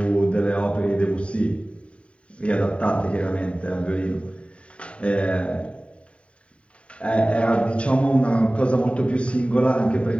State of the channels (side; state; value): right; late; 0.061 ms